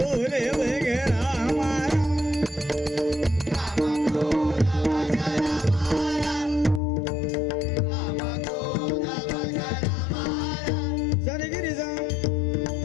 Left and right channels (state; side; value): drops out; right; at 6.8 s